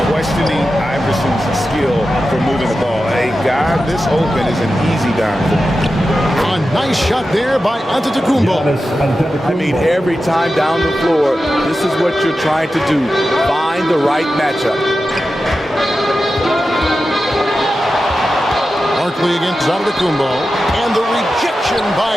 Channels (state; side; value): normal; both; correlation 0.92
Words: questioning Iverson's skill for moving the ball. A guy this open is an easy down for him. A nice shot there by Antetokounmpo. I mean, every time down the floor, this is what you're trying to do. Find the right matchup. Barkley against Antetokounmpo. And the rejection